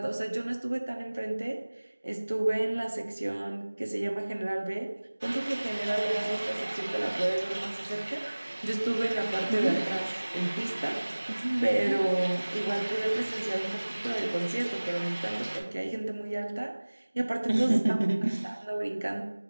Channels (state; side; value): inverted; both; correlation -1.00